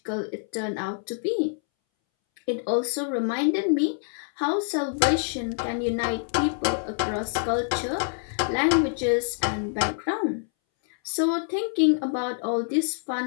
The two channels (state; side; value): silent; right; 61 dB below the other